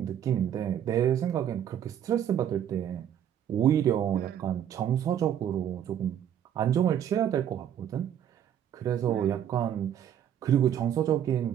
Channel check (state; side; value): quieter; left; 9.9 dB